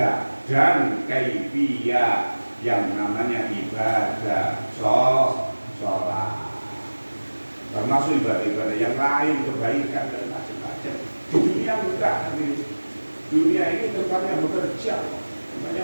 dan kaifiyah yang namanya ibadah sholat. Termasuk ibadah-ibadah yang lain, kebaikan dan macam-macam. Di dunia enggak, dunia ini tempatnya bekerja,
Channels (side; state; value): both; inverted; correlation -1.00